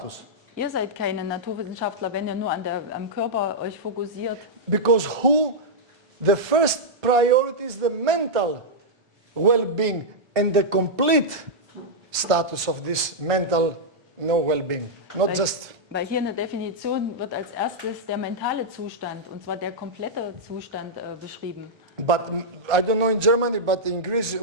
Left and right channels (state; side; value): late; left; 1.3 ms